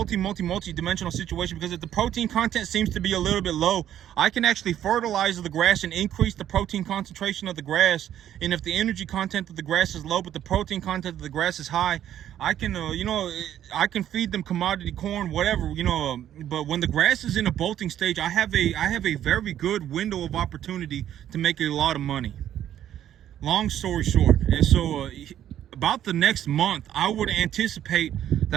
situation, because if the protein content seems to be a little bit low, I can actually fertilize the grass and increase the protein concentration of the grass. And if the energy content of the grass is low but the protein content of the grass is high, I can you know, I can feed them commodity corn, whatever, you know. But when the grass is in a bolting stage, I have a very good window of opportunity to make a lot of money. Long story short, and so about the next month, I would anticipate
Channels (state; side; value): quieter; left; 11.1 dB